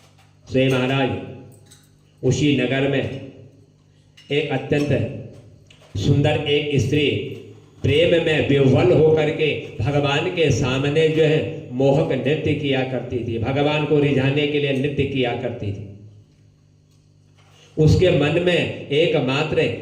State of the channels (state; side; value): identical; both; correlation 1.00